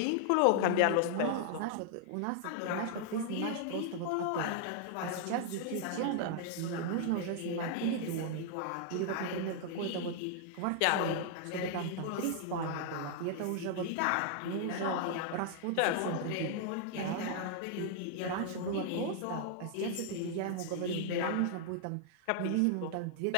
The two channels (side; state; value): both; different; correlation -0.01